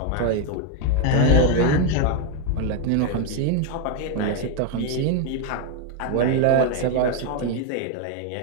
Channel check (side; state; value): both; different; correlation 0.01